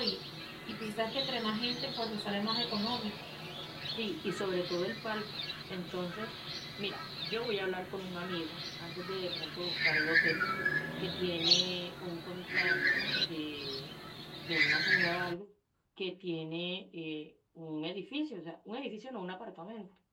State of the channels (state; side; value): identical; both; correlation 1.00